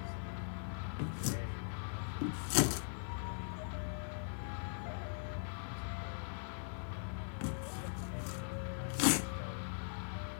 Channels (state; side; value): silent; right; digital silence